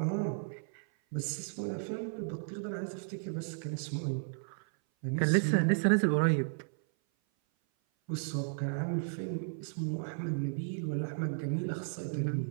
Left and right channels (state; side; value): silent; left; 55 dB below the other